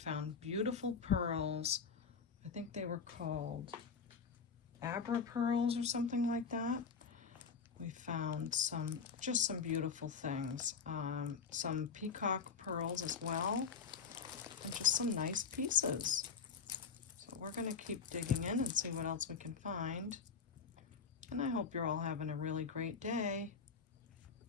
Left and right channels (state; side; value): quieter; right; 5.8 dB